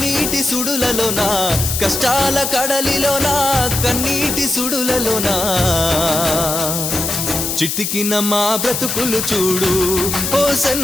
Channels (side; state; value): left; noise; hiss, 2 dB below the sound